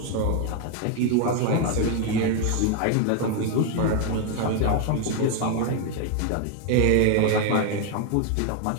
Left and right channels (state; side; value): different; both; correlation 0.01